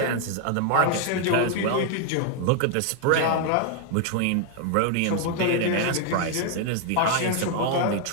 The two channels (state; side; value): different; both; correlation 0.00